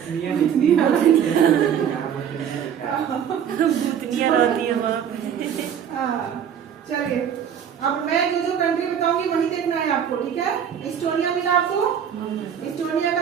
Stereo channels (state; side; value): quieter; left; 8.6 dB